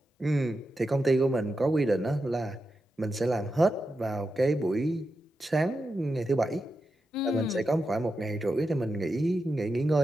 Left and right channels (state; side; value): normal; both; correlation 0.89